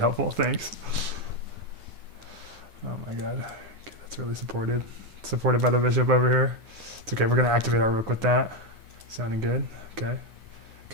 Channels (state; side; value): late; left; 9.3 ms